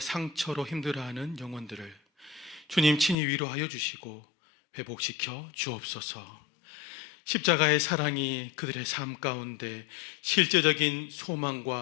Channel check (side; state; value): right; drops out; at 3.2 s